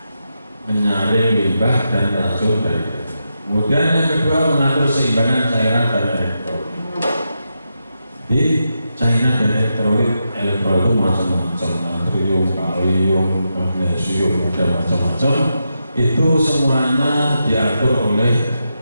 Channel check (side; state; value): both; inverted; correlation -0.86